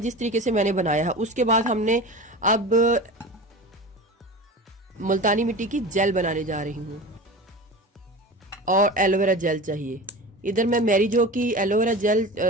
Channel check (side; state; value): both; normal; correlation 0.31